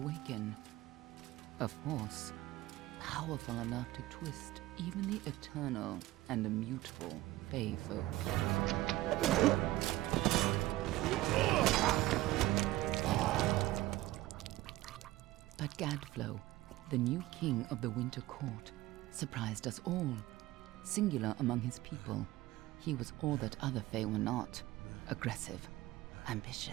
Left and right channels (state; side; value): quieter; left; 17.0 dB